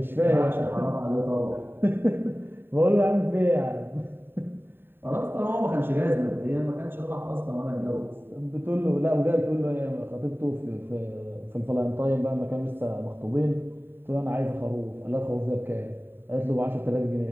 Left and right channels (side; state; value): left; late; 0.10 ms